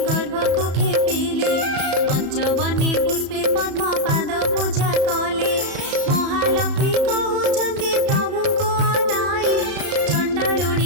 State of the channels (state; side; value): late; left; 34 ms